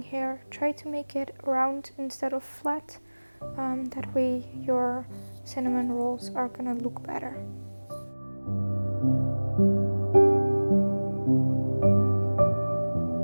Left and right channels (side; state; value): both; inverted; correlation -1.00